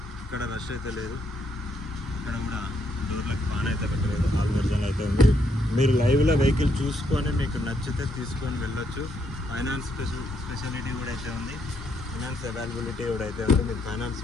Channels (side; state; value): both; normal; correlation 0.74